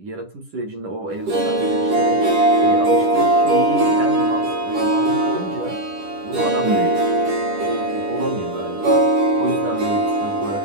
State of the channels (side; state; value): left; late; 10 ms